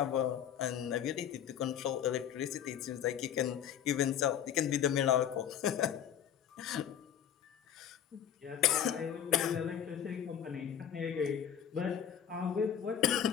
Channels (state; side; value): quieter; right; 9.3 dB